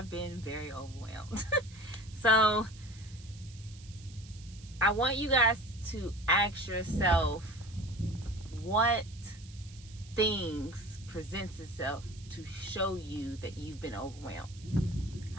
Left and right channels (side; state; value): right; noise; hiss, 21 dB below the sound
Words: been very overwhelmed. So I want you guys to ask yourself what things presents itself to show you that you've been overwhelmed.